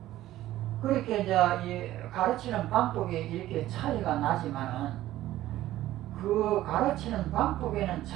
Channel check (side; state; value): left; quieter; 14.6 dB